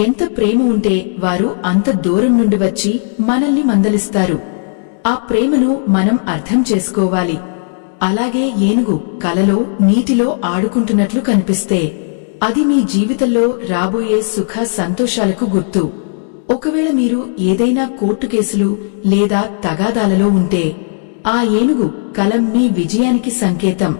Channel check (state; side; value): silent; right; digital silence